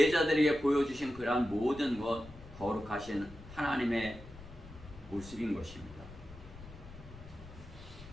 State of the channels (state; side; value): noise; left; rumble, 17 dB below the sound